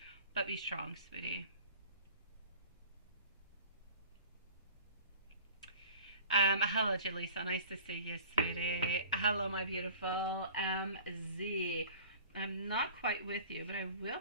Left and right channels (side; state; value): both; inverted; correlation -0.44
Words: but be strong, sweetie. Hello, Jaleesa. Nice to see you, sweetie. Hello, my beautiful MZ. I'm not quite with you, but I will